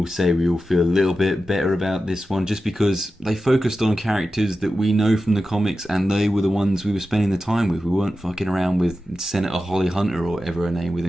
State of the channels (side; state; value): both; normal; correlation 0.92